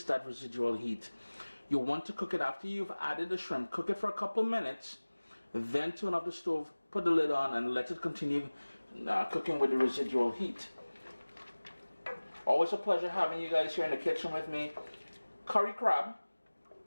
that residual heat, you want to cook it after you've added the shrimp. Cook it for a couple minutes, then turn off the stove, put the lid on, and let it continue cooking with the residual heat. Always a pleasure having you guys here in the kitchen with me. Curry crab,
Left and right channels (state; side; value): inverted; both; correlation -1.00